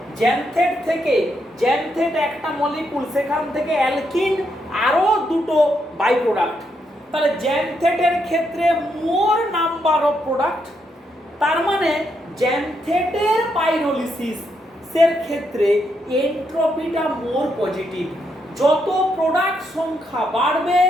জ্যানথেট থেকে জ্যানথেট একটা মলিকুল, সেখান থেকে অ্যালকিন আরো দুটো বাই প্রোডাক্ট। তাহলে জ্যানথেটের ক্ষেত্রে মোর নাম্বার অফ প্রোডাক্ট, তার মানে জ্যানথেটের পাইরোলিসিস এর ক্ষেত্রে এন্ট্রপিটা মোর পজিটিভ। যত প্রোডাক্ট সংখ্যা বাড়বে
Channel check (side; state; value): both; normal; correlation 0.79